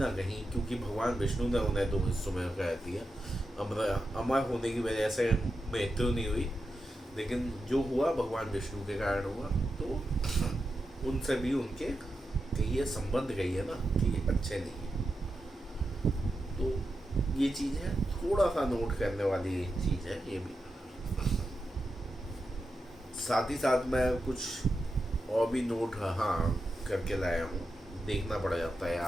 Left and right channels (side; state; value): both; normal; correlation 0.88